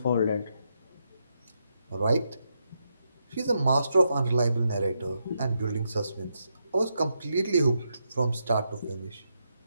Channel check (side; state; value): both; inverted; correlation -0.82